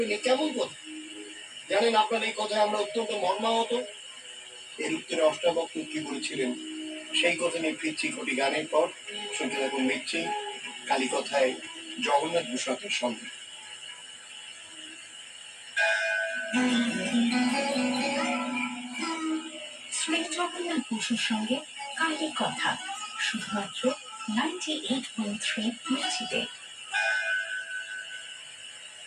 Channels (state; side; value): identical; both; correlation 1.00